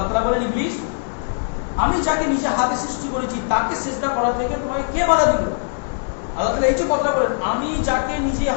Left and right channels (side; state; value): right; silent; 65 dB below the other